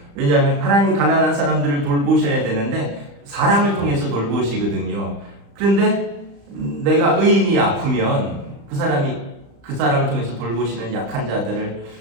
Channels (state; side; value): late; left; 35 ms